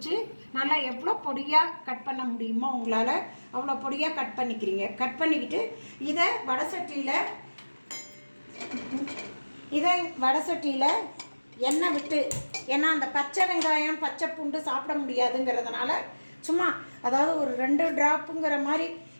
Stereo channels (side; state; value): both; inverted; correlation -1.00